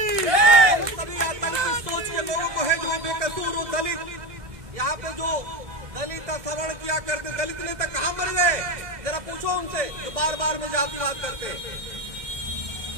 सभी आतंकी सोच के लोगों को है जो बेकसूर हो, दलित, यहाँ पे जो दलित का श्रवण किया करते, दलित नेता कहाँ मर गए जरा पूछो उनसे, जो बार बार में जातिवाद करते हैं।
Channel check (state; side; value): late; left; 1.7 ms